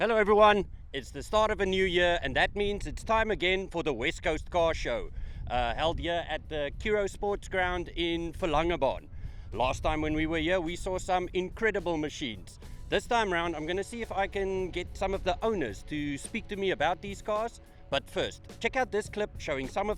everyone, it's the start of a new year and that means it's time again for the West Coast Car Show, held here at the Kuro Sports Ground in Verlangebaan. Last time when we were here we saw some incredible machines. This time round I'm going to see if I can get some of the owners to speak to me about these cars. But first, check out this clip showing some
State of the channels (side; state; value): both; identical; correlation 1.00